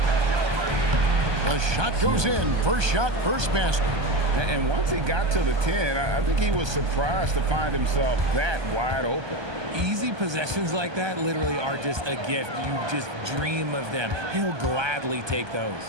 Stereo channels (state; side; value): late; left; 1.2 ms